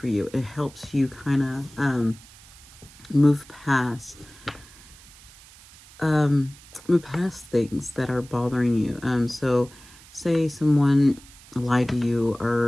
you. It helps you kind of move past things that are bothering you. So say someone lied to you,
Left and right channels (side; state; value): right; noise; hiss, 22 dB below the sound